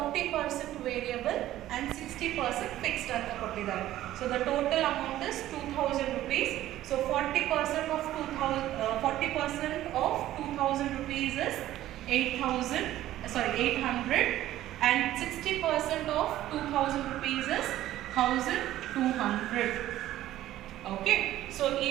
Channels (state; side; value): quieter; left; 14.0 dB